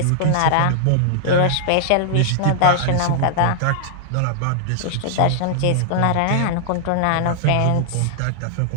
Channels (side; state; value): both; different; correlation -0.01